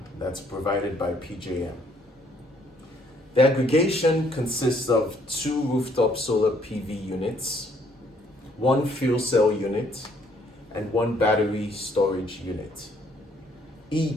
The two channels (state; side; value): normal; both; correlation 0.66